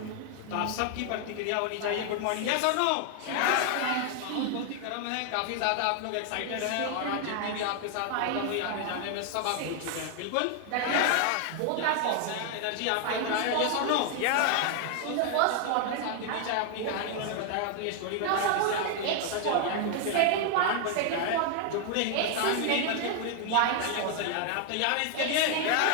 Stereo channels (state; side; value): different; both; correlation 0.00